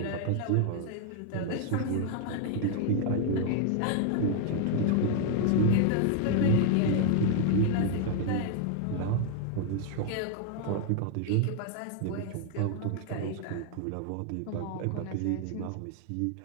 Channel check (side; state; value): both; different; correlation 0.00